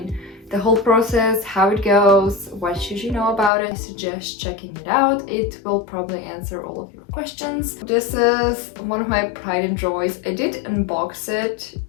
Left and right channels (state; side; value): drops out; right; at 3.5 s